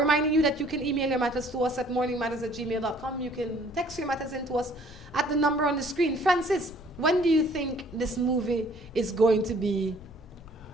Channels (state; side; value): noise; left; rumble, 20 dB below the sound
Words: you that you can email your matters to us at morningmatters@gmail.com. You can text your matters in to us at the number on the screen. Francis, when do you think this movie is going to be